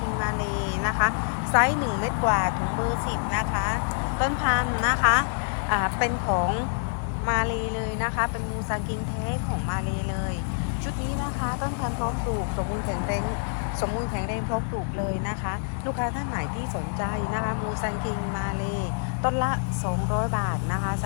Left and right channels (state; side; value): silent; right; digital silence